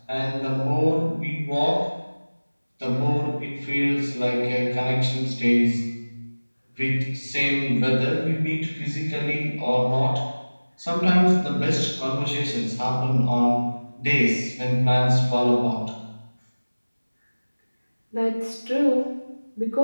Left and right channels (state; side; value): inverted; both; correlation -1.00